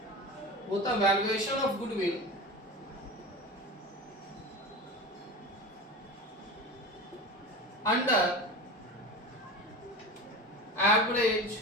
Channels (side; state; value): both; normal; correlation 0.29